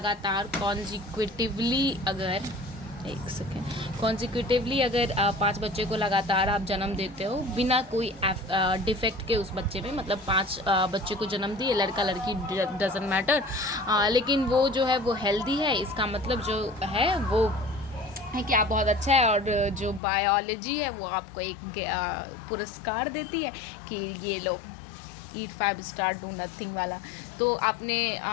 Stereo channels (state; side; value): drops out; right; at 20.0 s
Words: कॉन्जिक्यूटिवली अगर 5 बच्चे को लगातार आप जन्म देते हो बिना कोई डिफेक्ट के उस बच्चे में, मतलब 5 बच्चे को जन्म दिए, लड़का लड़की डजंट मैटर, लेकिन वो जो है वो हेल्दी है, इसका मतलब जो है वो है कि आप बहुत अच्छा है। और जो बायोलॉजी है वो आपको एक पुरस्कार देती है कि ये लो ईट 5 स्टार डू नथिंग वाला। तो आपने